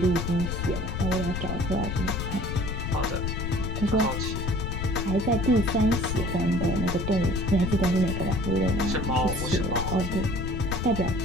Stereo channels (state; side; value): noise; left; rumble, 3 dB below the sound